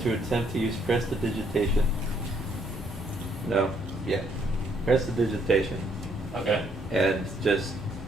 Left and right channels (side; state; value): both; normal; correlation 0.69